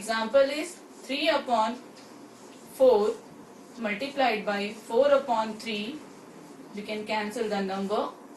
3 upon 4 multiplied by 4 upon 3. We can cancel the number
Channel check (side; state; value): both; identical; correlation 1.00